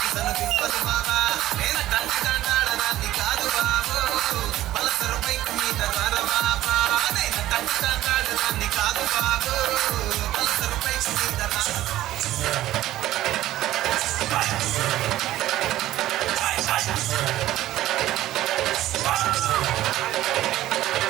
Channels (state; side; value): quieter; left; 14.6 dB